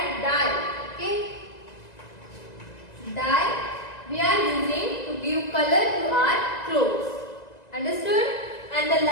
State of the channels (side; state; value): right; late; 2.0 ms